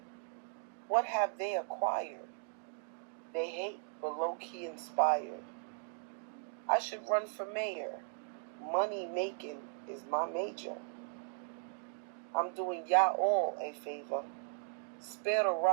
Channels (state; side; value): silent; left; digital silence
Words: What have they acquired? They hate, but low-key inspired. I should run for mayor. Money making is my major. I'm doing y'all all a favor. Spare the